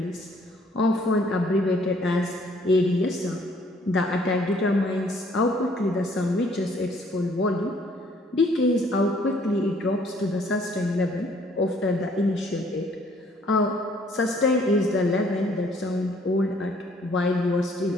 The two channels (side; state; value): both; normal; correlation 0.62